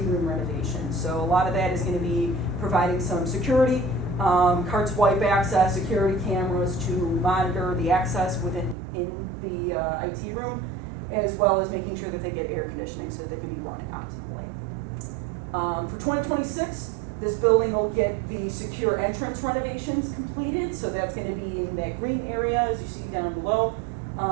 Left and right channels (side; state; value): left; drops out; at 8.8 s